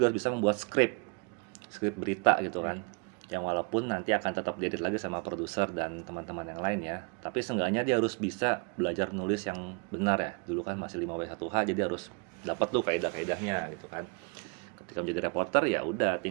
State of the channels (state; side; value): quieter; left; 33.0 dB